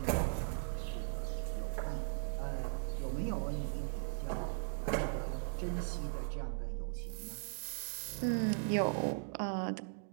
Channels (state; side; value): silent; left; digital silence